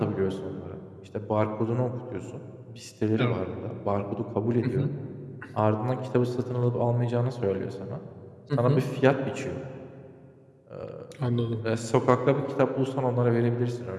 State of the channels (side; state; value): both; identical; correlation 1.00